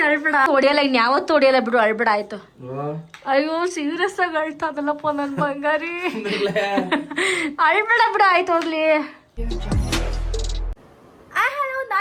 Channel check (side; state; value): both; identical; correlation 1.00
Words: ಅಳ್ಬೇಡ. ಹೊಡಿಯಲ್ಲ, ಇನ್ ಯಾವತ್ತು ಹೊಡಿಯಲ್ಲ ಬಿಡು, ಅಳ್ಬೇಡ ಆಯ್ತು. ಅಯ್ಯೋ ಸೀರಿಯಸ್ ಆಗಿ ಅಳ್ತಾದಲ್ಲಪ್ಪ ನನ್ ಬಂಗಾರಿ. ಅಳ್ಬೇಡ ಬಿಡು, ಆಯ್ತು ಹೋಗ್ಲಿ. ಹಲೋ,